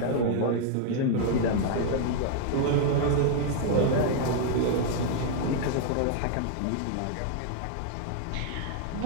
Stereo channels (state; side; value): different; both; correlation 0.00